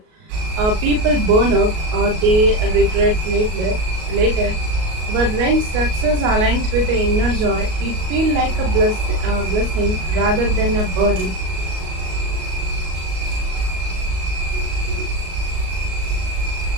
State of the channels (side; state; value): left; late; 38 ms